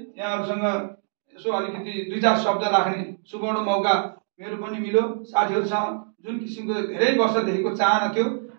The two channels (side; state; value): left; silent; digital silence